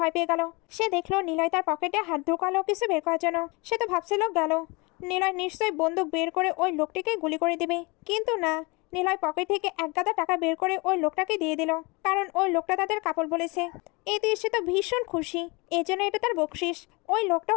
পেয়ে গেল। সে দেখলো নিলয় তার পকেটে হাত ঢুকালো কিছু বের করার জন্য। সে তো ভাবছিল গেল, নিলয় নিশ্চয়ই বন্দুক বের করে ওই লোকটিকে গুলি করে দিবে, কিন্তু না, নিলয় পকেট থেকে 1 গাদা টাকা বের করে ওই লোকটাকে দিয়ে দিল, কারণ ওই লোকটা তাদের কাপড় বলেছে। এতে সে তো ভীষণ খুশি, এজন্য এটা তার বকশিস। ওই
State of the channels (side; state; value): right; quieter; 27.2 dB